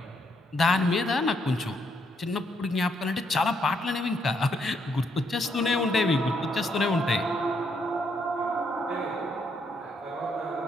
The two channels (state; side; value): normal; both; correlation 0.74